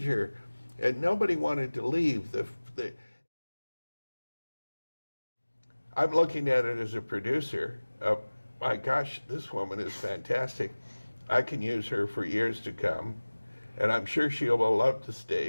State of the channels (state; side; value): inverted; both; correlation -1.00